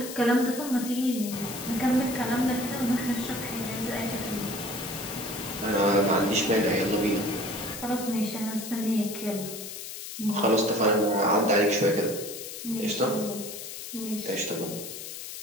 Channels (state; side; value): noise; left; hiss, 9 dB below the sound